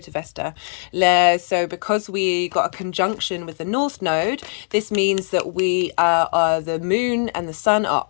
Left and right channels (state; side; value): silent; right; digital silence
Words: Vesta, so because we got a conjunction with the North Node, this means that we are the Moon and the Sun are